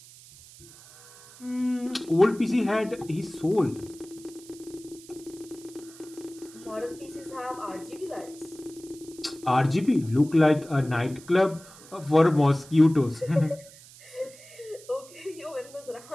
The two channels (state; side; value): noise; right; hiss, 21 dB below the sound